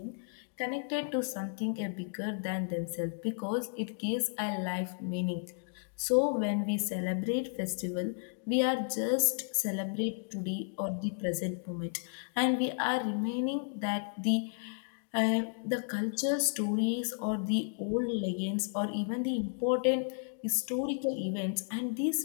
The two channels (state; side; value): silent; right; digital silence